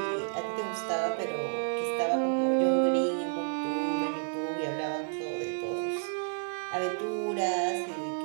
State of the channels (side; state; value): left; silent; digital silence